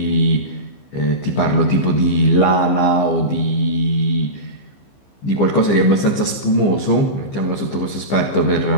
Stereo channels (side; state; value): right; late; 15 ms